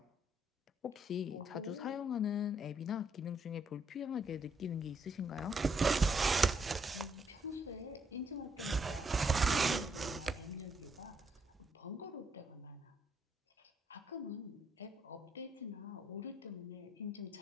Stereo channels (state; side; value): normal; both; correlation 0.74